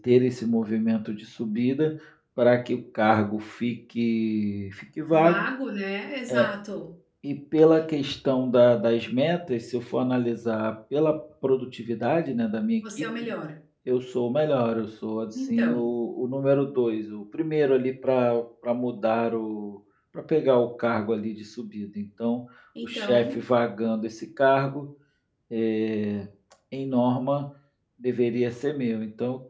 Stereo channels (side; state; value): both; identical; correlation 1.00